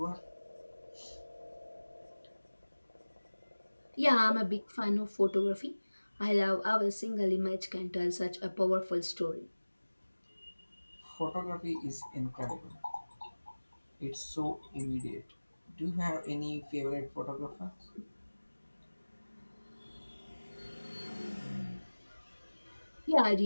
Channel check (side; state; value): both; inverted; correlation -1.00